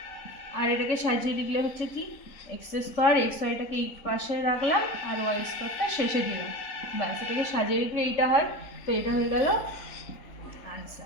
আর এটাকে সাজিয়ে লিখলে হচ্ছে কি এক্স স্কোয়ার এক্স ওয়াইটাকে এই পাশে রাখলাম আর ওয়াই স্কোয়ারটা শেষে দিলাম, ব্যাস এটাকে সাজিয়ে লিখলে এইটা হয়। তো এটা হয়ে গেল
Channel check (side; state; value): right; late; 3.9 ms